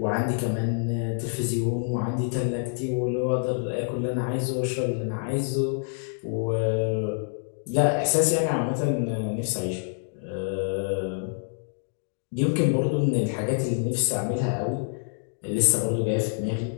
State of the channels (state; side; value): silent; right; digital silence